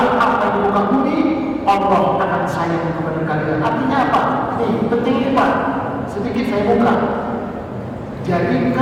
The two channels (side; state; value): both; identical; correlation 1.00